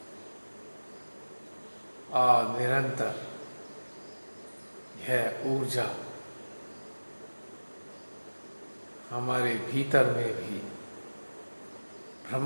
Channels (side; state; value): both; inverted; correlation -1.00